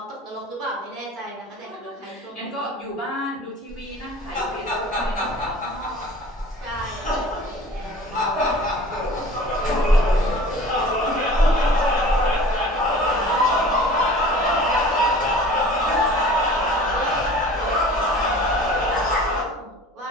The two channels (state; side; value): normal; both; correlation 0.43